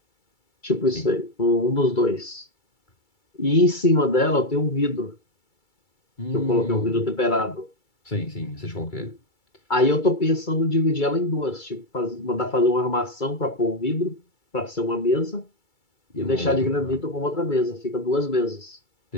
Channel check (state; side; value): late; right; 2.3 ms